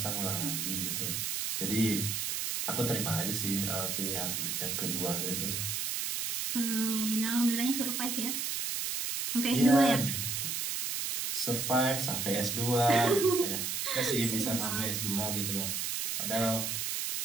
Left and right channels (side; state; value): right; noise; hiss, 1 dB below the sound